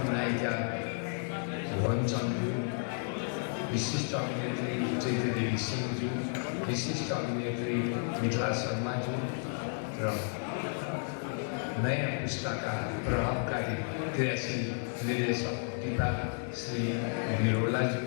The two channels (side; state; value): right; silent; 56 dB below the other